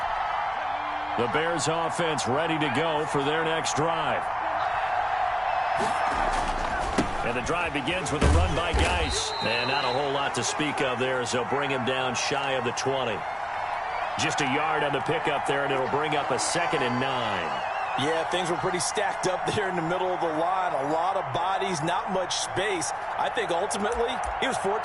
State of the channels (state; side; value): identical; both; correlation 1.00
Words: The Bears offense ready to go for their next drive. And the drive begins with a run by Geis. And not a whole lot to speak of there as they'll bring him down shy of the 20. Just a yard on the pickup there, and it'll bring up a 2nd and 9. Yeah, things were pretty stacked up there in the middle of the line. A lot of bodies, not much space. I think ultimately he was